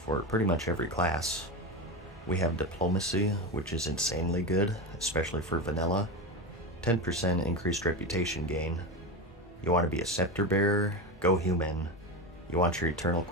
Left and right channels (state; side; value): normal; both; correlation 0.20